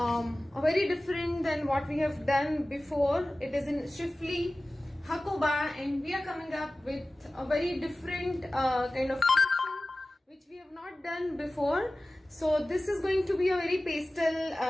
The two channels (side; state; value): both; normal; correlation 0.97